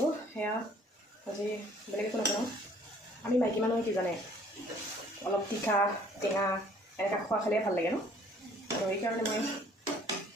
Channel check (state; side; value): normal; both; correlation 0.57